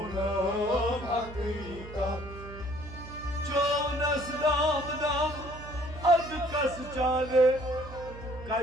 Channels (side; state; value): right; noise; hum, 14 dB below the sound